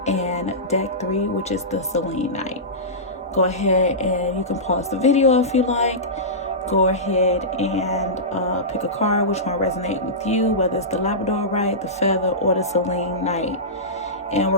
and deck 3, which is the Selenite. Go ahead and you can pause the video if you like. Go ahead and pick a card, which one resonate with you, whether it's the Labradorite, the feather, or the Selenite. And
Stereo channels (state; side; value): normal; both; correlation -0.17